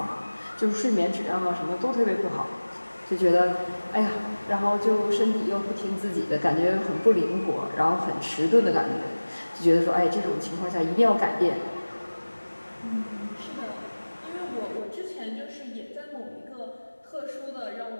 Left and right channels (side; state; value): both; inverted; correlation -1.00